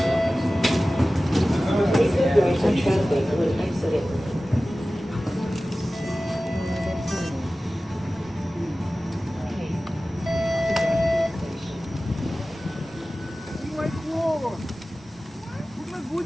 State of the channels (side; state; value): both; normal; correlation 0.96